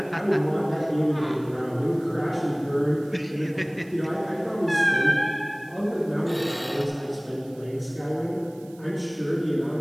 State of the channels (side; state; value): right; noise; hiss, 27 dB below the sound